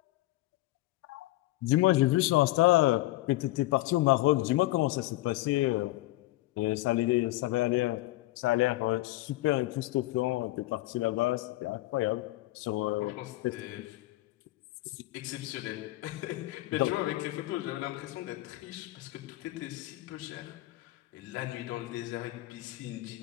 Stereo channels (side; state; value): right; quieter; 18.0 dB